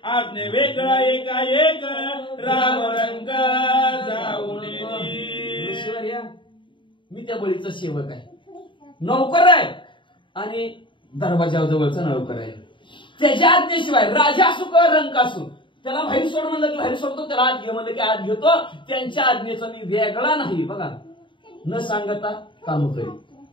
आपने वेगळा एकाएक राम रंग जाऊन. ऋषीवर्या मी त्या बळीचा सेवक आहे, नौकर आहे आणि दरवाजाजवळचा नौकर आहे. त्याच्या आज्ञेशिवाय राजा असू का रंक असू त्याला बाहेर सोड म्हणलं की बाहेर सोडतो, त्याला आत घे म्हणलं की आत घेतो. त्यांच्या आज्ञेचा मी वेगळा नाही. बघा, न सांगता काम करेल.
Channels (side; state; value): right; late; 0.24 ms